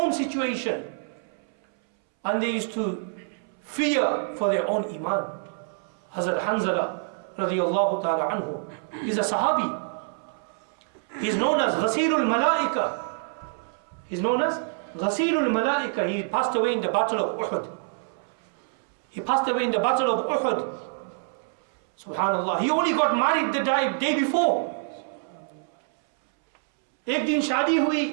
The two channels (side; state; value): left; silent; 61 dB below the other